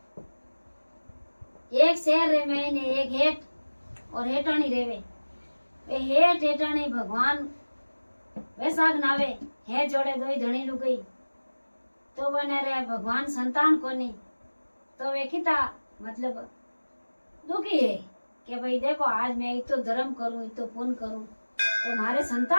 एक शहर रे महीने एक हेठ और हेठाणी रेवे। वे हेठ हेठाणी भगवान बैसाख नावे हे जोड़े दोई धणी लुगई तो बने रे भगवान संतान कोनी तो वे किता मतलब दुखी है कि भाई देखो आज मैं इतो धर्म करूं इतो पुण्य करूं तो मारे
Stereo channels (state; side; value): inverted; both; correlation -1.00